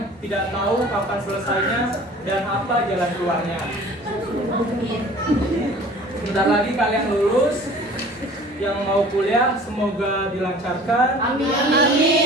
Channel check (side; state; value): both; normal; correlation 0.46